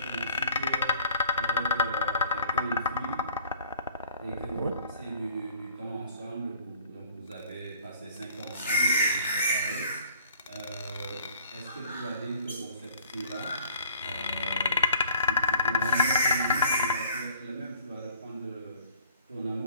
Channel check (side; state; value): both; inverted; correlation -0.53